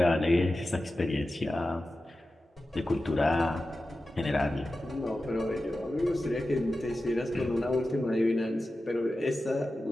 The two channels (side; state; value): both; normal; correlation 0.93